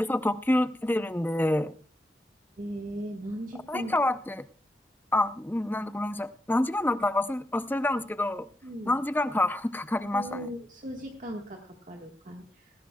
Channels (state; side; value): normal; both; correlation 0.84